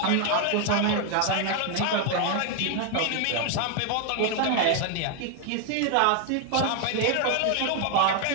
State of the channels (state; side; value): different; both; correlation 0.01